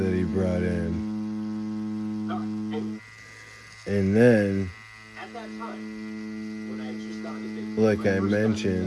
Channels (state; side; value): identical; both; correlation 1.00